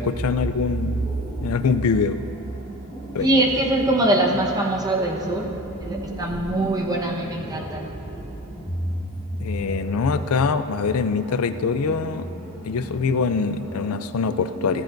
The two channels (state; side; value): normal; both; correlation 0.31